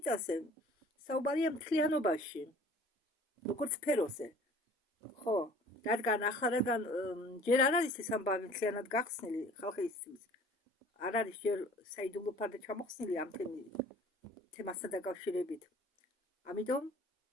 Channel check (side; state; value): both; normal; correlation 0.50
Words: საუბარია მთლიანობაში, როგორც სფეროზე. ხო, რადგან ჯერ არ არის ეს ამბავი მთლიანად გახსნილი ხალხისთვის, არ არის ჯერ საიდუმლო ფარდა ჩამოხსნილი ამ თემასთან დაკავშირებით. ამიტომ